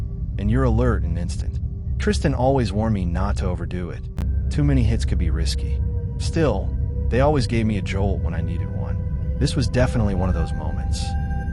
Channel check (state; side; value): identical; both; correlation 1.00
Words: and you're alert in an instant. Tristan always warned me not to overdo it. Too many hits could be risky. Still, they always gave me a jolt when I needed one. This was definitely one of those moments.